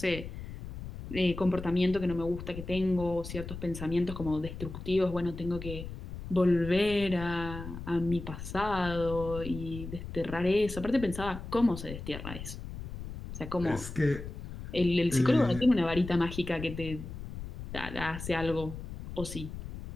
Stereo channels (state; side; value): noise; left; rumble, 10 dB below the sound